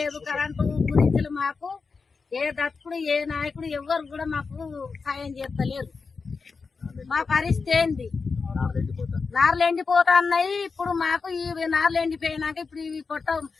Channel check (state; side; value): quieter; right; 4.8 dB